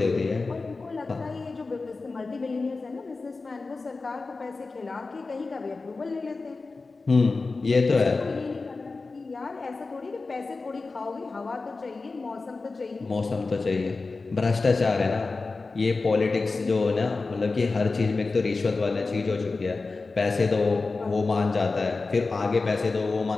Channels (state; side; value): quieter; right; 3.8 dB